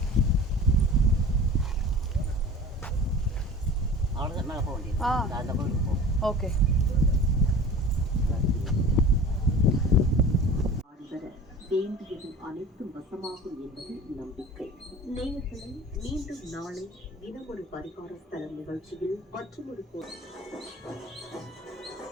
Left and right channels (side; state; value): both; normal; correlation 0.40